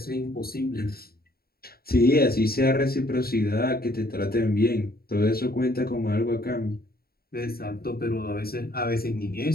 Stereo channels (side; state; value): right; late; 0.44 ms